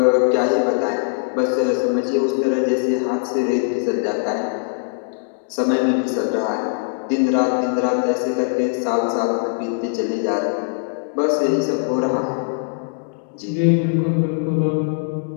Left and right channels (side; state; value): right; silent; digital silence